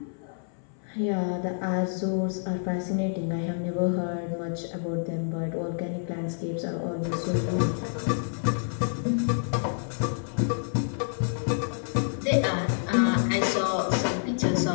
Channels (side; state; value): right; silent; 58 dB below the other